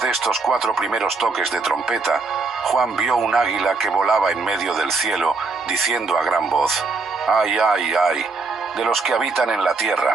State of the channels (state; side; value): quieter; left; 4.1 dB